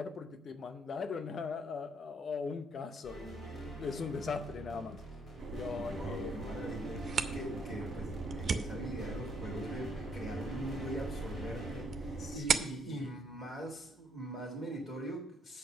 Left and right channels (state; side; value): normal; both; correlation 0.70